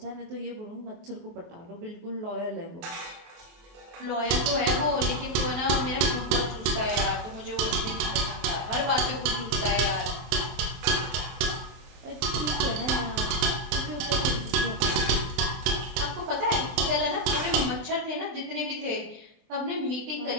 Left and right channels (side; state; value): left; late; 24 ms